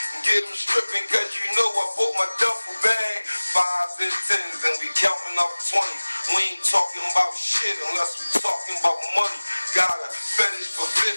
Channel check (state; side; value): inverted; both; correlation -1.00